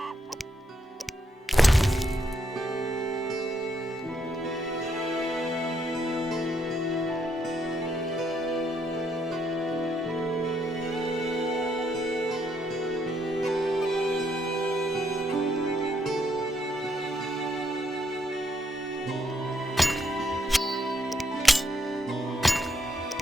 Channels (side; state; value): both; normal; correlation 0.75